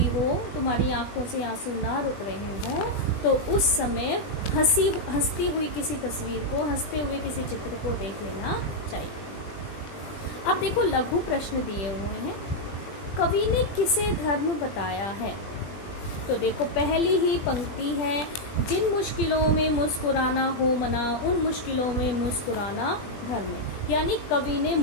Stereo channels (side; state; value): right; late; 20 ms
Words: हो, तुम्हारी आंखों से आंसू ना रुक रहे हो, तो उस समय हंसती हुई किसी तस्वीर को, हंसते हुए किसी चित्र को देख लेना चाहिए। अब देखो लघु प्रश्न दिए हुए हैं, कवि ने किसे धर्म बताया है। तो देखो पहली ही पंक्ति है, जिन मुश्किलों में मुस्कुराना हो मना उन मुश्किलों में मुस्कुराना धर्म। यानी कवि ने